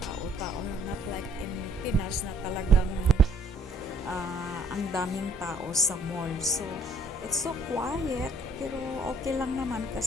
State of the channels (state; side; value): normal; both; correlation 0.62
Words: not like in Pinas na talagang ang daming tao sa mall. So, it's so quiet, pero okay lang naman